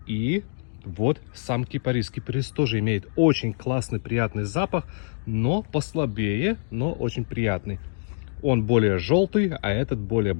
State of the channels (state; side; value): silent; right; digital silence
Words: И вот сам кипарис. Кипарис тоже имеет очень классный, приятный запах, но послабее, но очень приятный. Он более желтый, а этот более